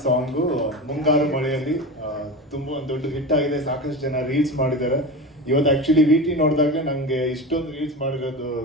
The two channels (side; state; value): both; normal; correlation 0.26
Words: ಸಾಂಗು ಮುಂಗಾರು ಮಳೆಯಲ್ಲಿ ತುಂಬ ಒಂದು ದೊಡ್ಡ ಹಿಟ್ ಆಗಿದೆ. ಸಾಕಷ್ಟು ಜನ ರೀಲ್ಸ್ ಮಾಡಿದ್ದಾರೆ. ಇವತ್ತು ಆ್ಯಕ್ಚುಲಿ ವಿ ಟಿ ನೋಡಿದಾಗ ನನಗೆ ಇಷ್ಟೊಂದು ರೀಲ್ಸ್ ಮಾಡಿರೋದು